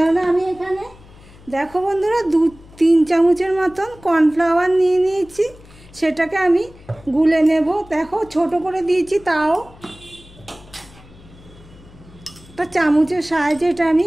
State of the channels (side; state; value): left; noise; hum, 23 dB below the sound